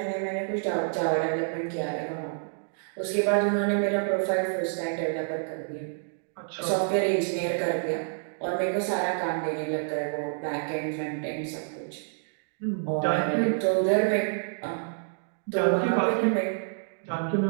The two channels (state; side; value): silent; left; digital silence